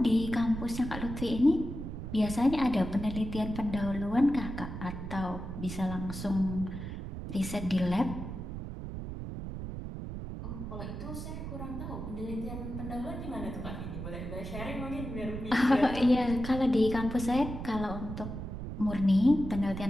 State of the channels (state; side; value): noise; right; rumble, 7 dB below the sound